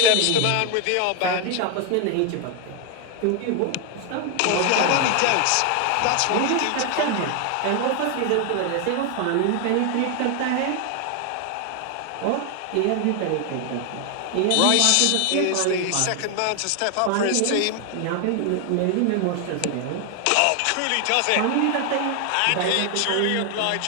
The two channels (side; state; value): both; different; correlation 0.00